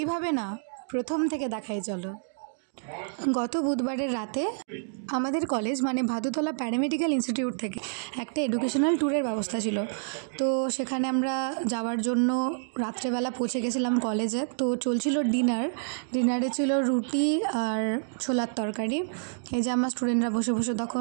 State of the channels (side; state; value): left; silent; digital silence